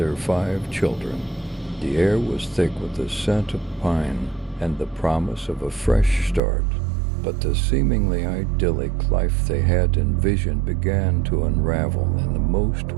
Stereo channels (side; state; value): left; drops out; at 6.4 s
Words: 5 children. The air was thick with the scent of pine and the promise of a fresh start. But the seemingly idyllic life they had envisioned began to unravel in the most